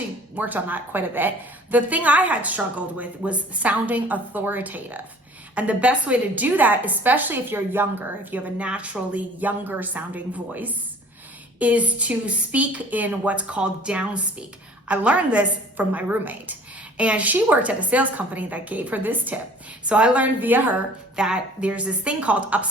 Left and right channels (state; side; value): normal; both; correlation 0.50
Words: worked on that quite a bit. The thing I had struggled with was sounding authoritative. And the best way to do that, especially if you're younger, if you have a naturally younger sounding voice, is to speak in what's called DOWNSPEAK. I learned this from my roommate, and she worked at a sales company that gave her this tip. So I learned via her that there's this thing called